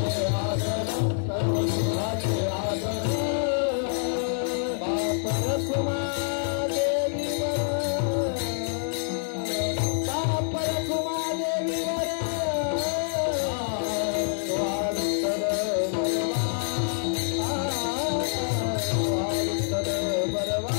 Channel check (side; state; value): right; silent; 59 dB below the other